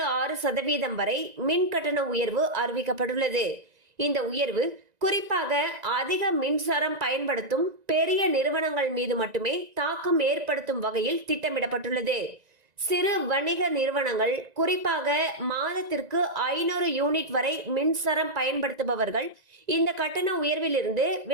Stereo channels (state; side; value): late; left; 1.9 ms